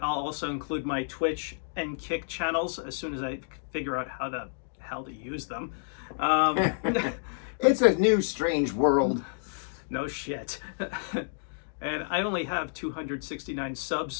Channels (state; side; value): silent; right; digital silence